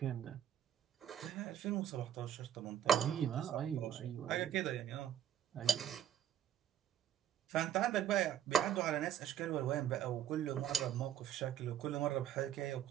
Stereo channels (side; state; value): left; quieter; 10.1 dB